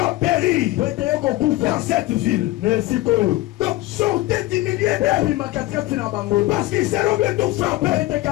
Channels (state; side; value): quieter; right; 17.8 dB